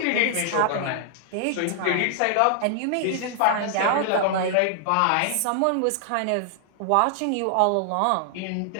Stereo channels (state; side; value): different; both; correlation 0.00